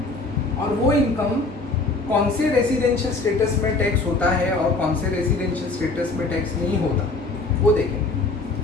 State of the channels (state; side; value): quieter; right; 3.5 dB